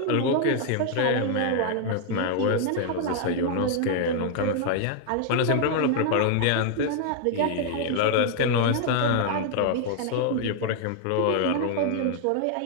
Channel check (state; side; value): different; both; correlation 0.00